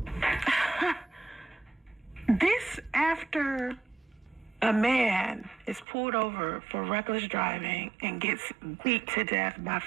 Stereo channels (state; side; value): drops out; left; at 5.9 s